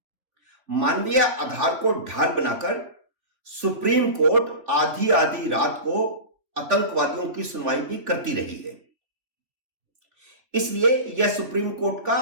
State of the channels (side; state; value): left; late; 3.6 ms